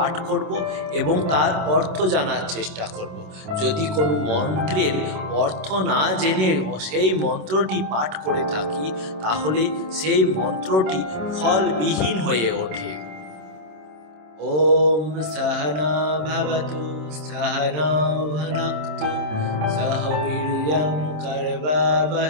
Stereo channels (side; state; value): left; late; 27 ms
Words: করব এবং তার অর্থ জানার চেষ্টা করব। যদি কোনো মন্ত্রের অর্থ না জেনে সেই মন্ত্রটি পাঠ করে থাকি, তাহলে সেই মন্ত্রটি ফলবিহীন হয়ে ওঠে। ওম সহনা ভবতু সহনৌ ভুনক্তু সহ বীর্যং